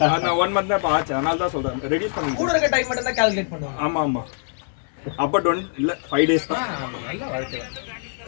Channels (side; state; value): right; silent; 63 dB below the other